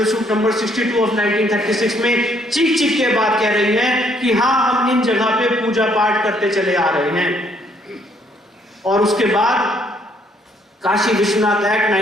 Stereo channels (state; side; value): normal; both; correlation 0.67